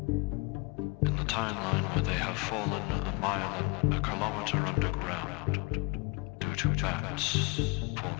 In the timeline where they have fallen a mile and a kilometer underground due to bats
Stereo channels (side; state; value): right; quieter; 27.2 dB